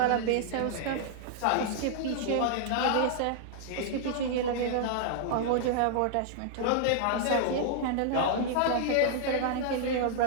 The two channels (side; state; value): both; different; correlation -0.01